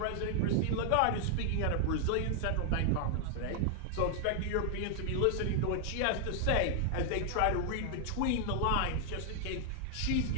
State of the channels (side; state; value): both; different; correlation 0.00